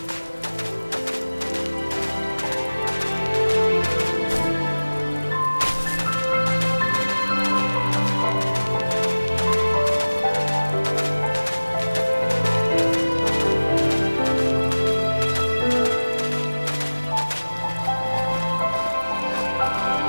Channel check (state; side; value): inverted; both; correlation -1.00